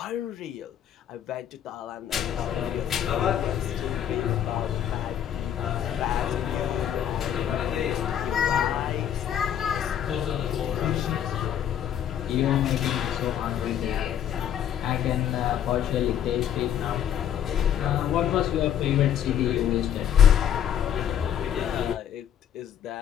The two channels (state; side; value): quieter; right; 9.8 dB